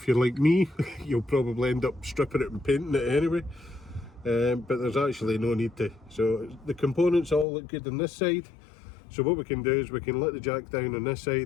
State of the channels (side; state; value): right; drops out; at 7.5 s